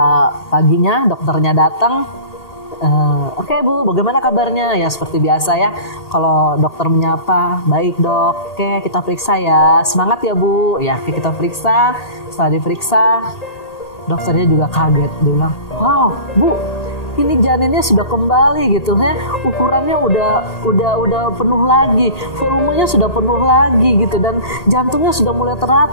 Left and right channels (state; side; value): late; right; 1.8 ms